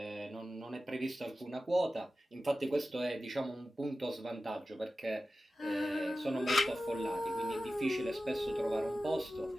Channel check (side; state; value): both; normal; correlation 0.94